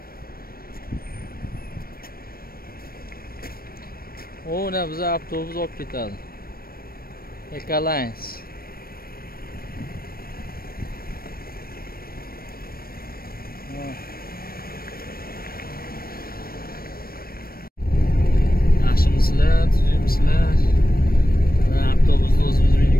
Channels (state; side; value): late; right; 0.44 ms